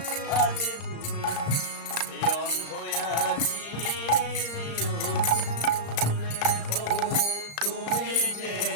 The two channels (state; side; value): late; right; 35 ms